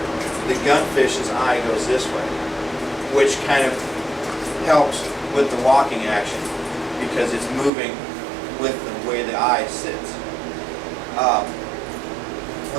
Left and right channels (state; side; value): drops out; left; at 7.7 s